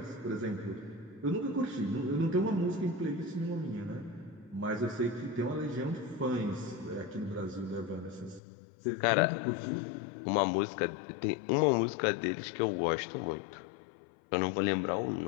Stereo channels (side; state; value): right; drops out; at 8.4 s